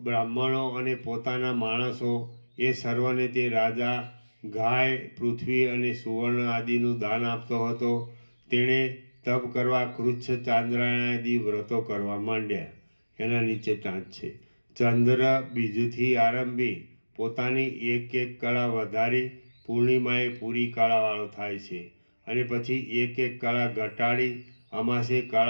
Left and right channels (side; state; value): both; inverted; correlation -1.00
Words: બ્રાહ્મણો અને પોતાના માણસો એ સર્વને તે રાજા ગાય, પૃથ્વી અને સુવર્ણ આદિનું દાન આપતો હતો. તેણે તપ કરવા કૃચ્છ, ચાંદ્રાયણ આદિ વ્રતો કરવા માંડ્યા. એના નીચે ટાંચ છે. ચંદ્ર બીજથી આરંભી પોતાની એક કળા વધારી પૂર્ણિમાએ પૂરી કળાવાળો થાય છે અને પછી એક કળા ઘટાડી અમાસે